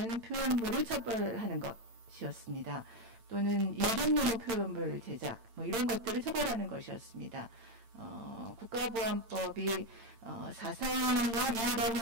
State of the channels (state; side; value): late; left; 8.8 ms